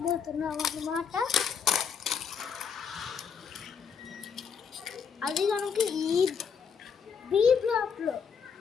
అన్నమాట. అది కనుక ఈ బి బ్లాక్లో,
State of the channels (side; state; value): right; quieter; 6.6 dB